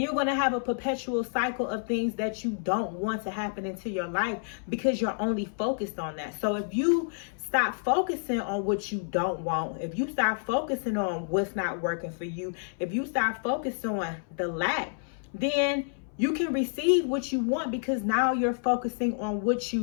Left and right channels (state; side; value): silent; right; 59 dB below the other